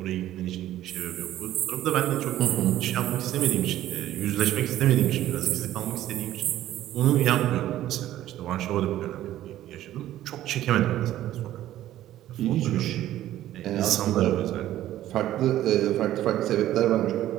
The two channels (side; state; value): left; quieter; 13.4 dB